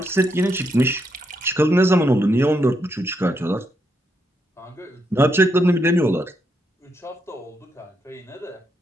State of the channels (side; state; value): both; normal; correlation 0.79